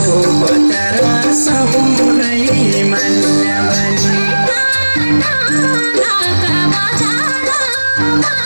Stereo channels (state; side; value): inverted; both; correlation -1.00